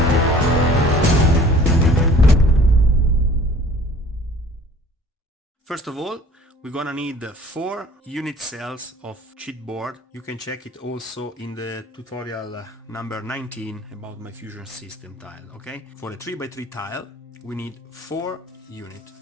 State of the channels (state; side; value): normal; both; correlation 0.50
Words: First of all, we're gonna need 4 unit cells of chipboard. You can check it also in the tutorial number 19 about my fusion system tile, okay? For a 3x3 tile, we need 4 units.